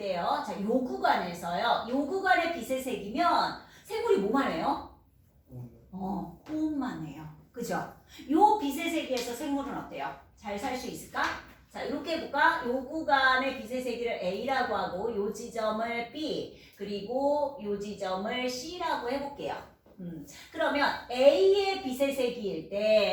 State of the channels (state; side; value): identical; both; correlation 1.00